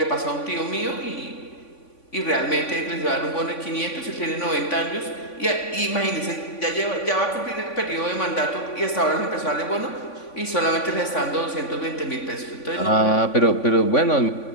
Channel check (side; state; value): right; late; 3.5 ms